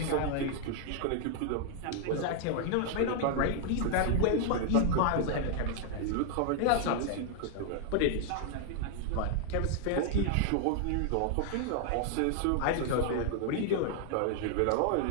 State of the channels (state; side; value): different; both; correlation 0.00